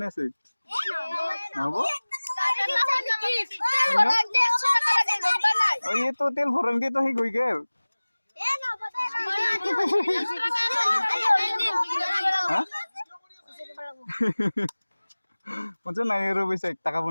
আছে নহ'ব অ এই তো তেল ভৰাম দে তো সি গৈ গেল হা মচা নাই আৰু পইচা 1 টাকা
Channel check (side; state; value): both; inverted; correlation -1.00